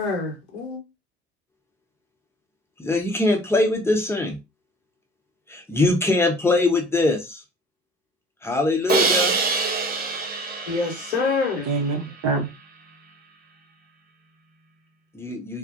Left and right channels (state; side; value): normal; both; correlation 0.47